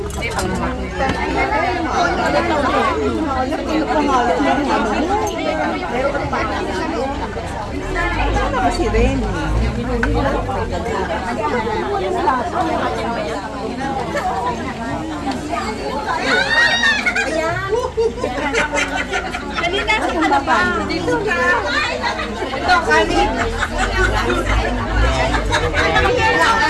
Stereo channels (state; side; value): identical; both; correlation 1.00